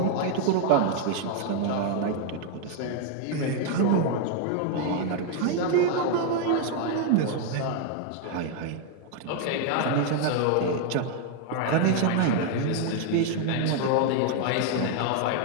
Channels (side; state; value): both; different; correlation 0.00